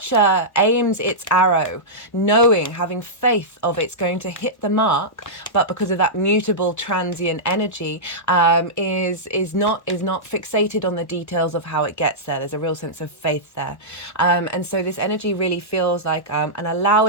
aims its arrow knowing, having faith of it's going to hit the mark, but because of that mutable transient energy, is not fixated on the details of how it gets there. There's a real sense of faith there, and so this energy really feels like an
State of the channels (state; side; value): late; right; 1.1 ms